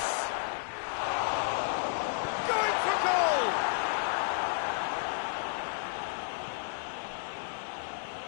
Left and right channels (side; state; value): right; silent; digital silence